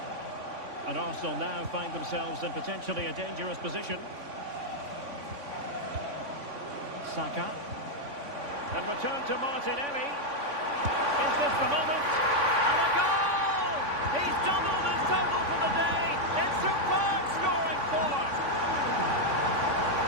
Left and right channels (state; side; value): late; left; 3.5 ms